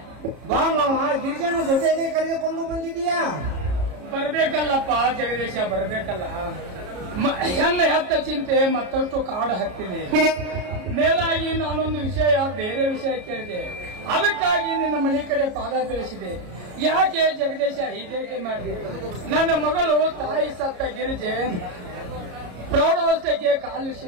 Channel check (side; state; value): left; late; 33 ms